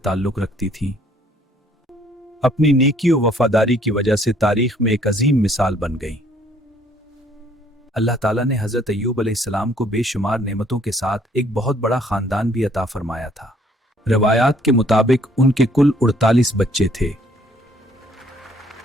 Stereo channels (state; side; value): normal; both; correlation 0.62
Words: رکھتی تھیں۔ اپنی نیکی و وفاداری کی وجہ سے تاریخ میں ایک عظیم مثال بن گئی۔ اللہ تعالیٰ نے حضرت ایوب علیہ السلام کو بے شمار نعمتوں کے ساتھ ایک بہت بڑا خاندان بھی عطا فرمایا تھا۔ روایات کے مطابق ان کے کل 48 بچے تھے۔